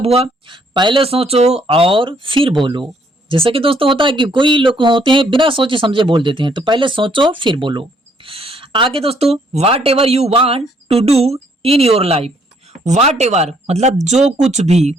हुआ? पहले सोचो और फिर बोलो। जैसे कि दोस्तों होता है कि कोई लोग होते हैं बिना सोचे समझे बोल देते हैं, तो पहले सोचो फिर बोलो। आगे दोस्तों, whatever you want to do in your life. Whatever मतलब जो कुछ भी,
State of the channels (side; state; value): both; normal; correlation 0.67